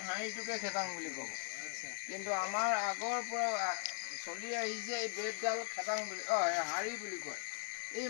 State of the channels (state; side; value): quieter; right; 32.4 dB